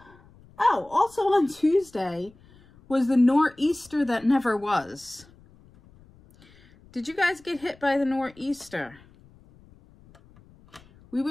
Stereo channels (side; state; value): left; noise; rumble, 27 dB below the sound